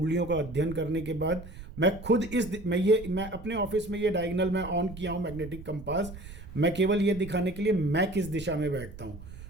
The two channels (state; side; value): noise; right; rumble, 13 dB below the sound